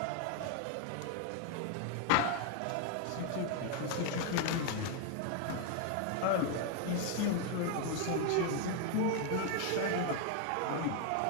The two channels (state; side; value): different; both; correlation 0.01